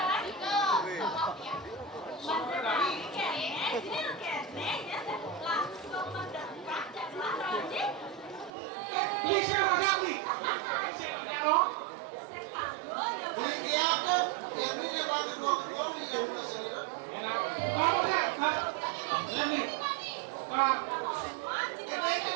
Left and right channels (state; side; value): drops out; left; at 8.5 s